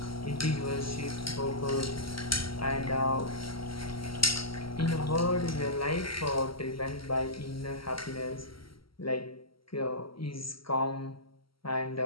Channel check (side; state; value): right; late; 0.74 ms